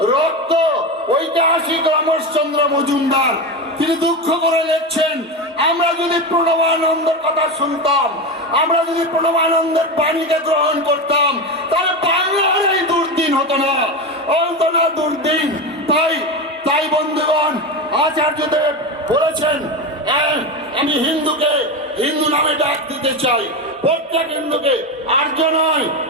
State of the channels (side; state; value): both; normal; correlation 0.18